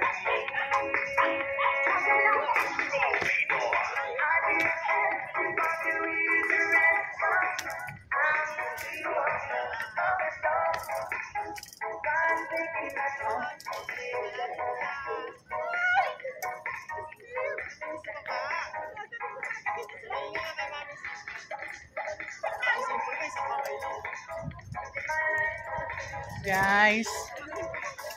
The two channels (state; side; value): identical; both; correlation 1.00